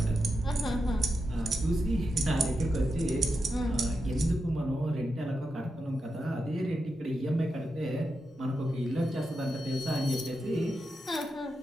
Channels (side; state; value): both; normal; correlation 0.87